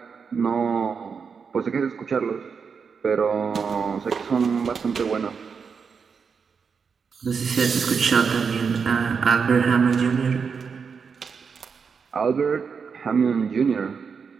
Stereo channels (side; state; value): left; quieter; 5.9 dB